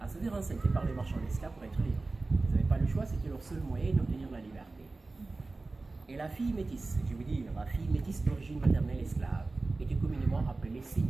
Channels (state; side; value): quieter; left; 3.4 dB